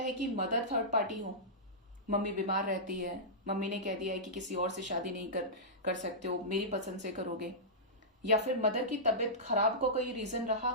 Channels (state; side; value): normal; both; correlation -0.15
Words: कि मदर थर्ड पार्टी हो, मम्मी बीमार रहती है, मम्मी ने कह दिया है कि किसी और से शादी नहीं कर सकते हो, मेरी पसंद से करोगे, या फिर मदर की तबीयत खराब को कोई रीजन रहा